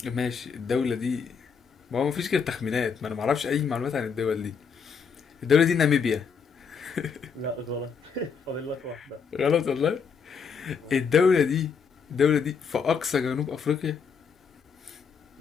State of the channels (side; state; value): right; quieter; 6.1 dB